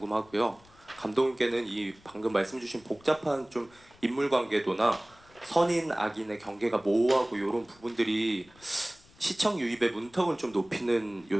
감독님께는 이 방금 말씀 주신 복잡한 좀 인물 관계도나 선인 악인의 경계가 모호하고 이런 부분들이 시청 유입의 문턱을 좀 높이는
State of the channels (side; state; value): left; noise; rumble, 27 dB below the sound